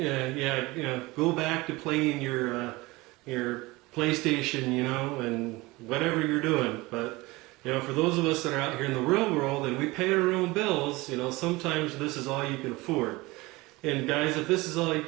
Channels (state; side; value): quieter; left; 21.8 dB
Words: back to playing your PlayStation, and whatever you're doing. But for those of us that are out here in the real world and we pay our own bills, sometimes this is all you can afford. And guys, if this is all you